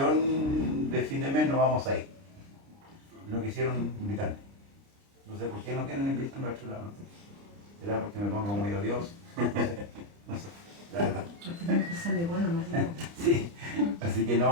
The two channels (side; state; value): left; late; 29 ms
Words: de fin de mes, no vamos a ir. No quisieron invitarme. No sé por qué no quieren invitarme a otro lado. No sé. ¿Será porque me pongo muy odioso? No sé, la verdad. Sí, así que